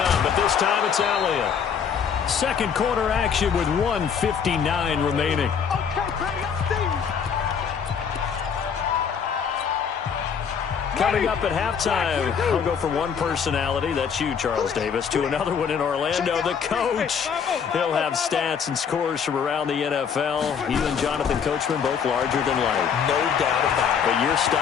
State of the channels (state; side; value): quieter; right; 7.1 dB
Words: but this time it's Elliott. 2nd quarter action with 1:59 remaining. Coming up at halftime, I'll go from one personality, that's you, Charles Davis, to another one in Orlando, the coach. He'll have stats and scores from around the NFL. You and Jonathan Coachman, both larger than life. No doubt about it. But you're